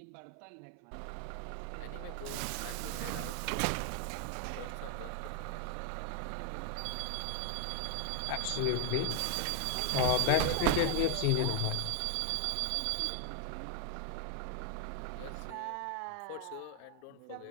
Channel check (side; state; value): both; different; correlation 0.01